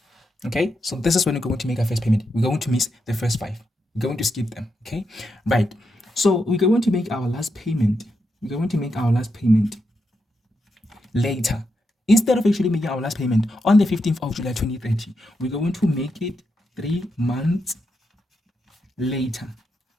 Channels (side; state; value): both; normal; correlation 0.84